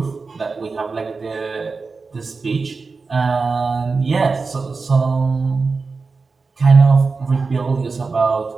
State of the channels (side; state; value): left; quieter; 4.3 dB